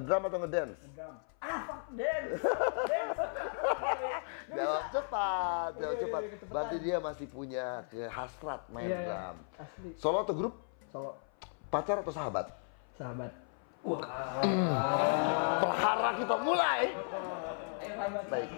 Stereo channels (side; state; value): right; silent; 54 dB below the other